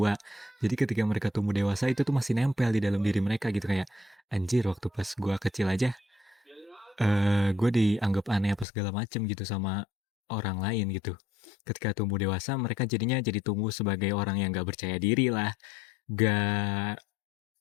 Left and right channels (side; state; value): right; drops out; at 8.7 s